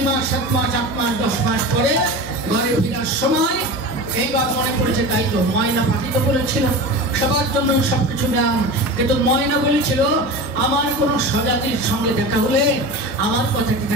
মাস 7 মাস 8 মাস 10 মাস পরে ঘরে ফেরার সময় এইবার মনে পড়েছে, তাই তো ময়না পাখি তো বলেছিল সবার জন্য সবকিছু দাম, কিন্তু ময়না বলেছিল আমার কোনো স্বজাতির সঙ্গে দেখা হলে আমার কথাটি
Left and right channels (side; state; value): both; normal; correlation 0.30